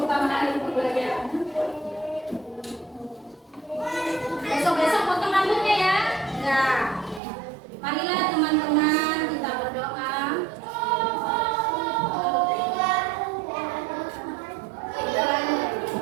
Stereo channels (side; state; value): left; drops out; at 7.2 s